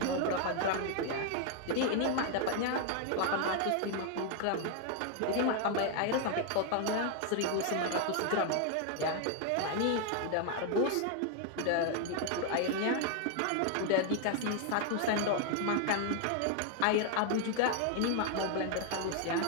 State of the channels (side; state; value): both; different; correlation 0.00